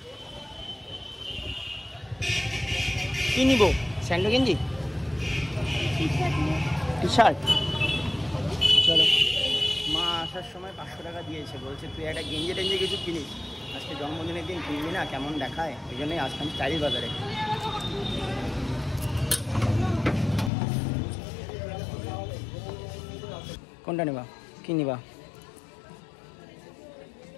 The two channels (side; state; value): right; drops out; at 20.5 s